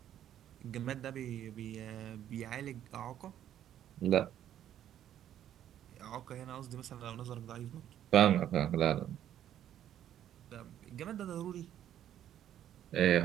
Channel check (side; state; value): left; quieter; 10.9 dB